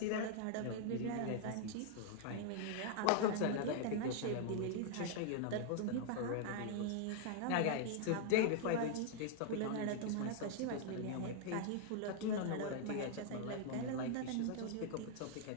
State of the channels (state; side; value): different; both; correlation -0.01